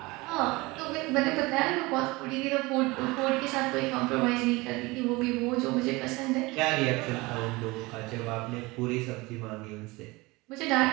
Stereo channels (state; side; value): quieter; left; 22.9 dB